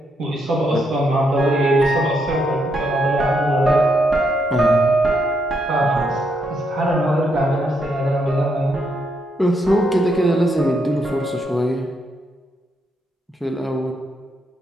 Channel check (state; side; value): normal; both; correlation 0.78